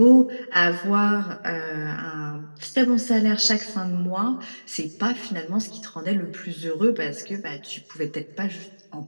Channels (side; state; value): both; inverted; correlation -1.00